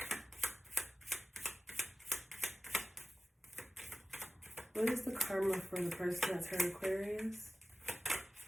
What is the karma for the person that's hurt Aquarius?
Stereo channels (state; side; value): normal; both; correlation 0.97